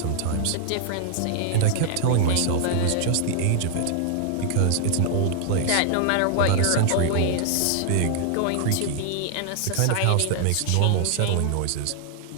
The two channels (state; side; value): different; both; correlation 0.00